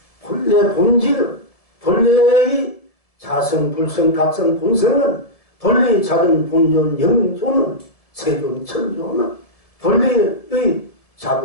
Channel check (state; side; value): late; right; 1.7 ms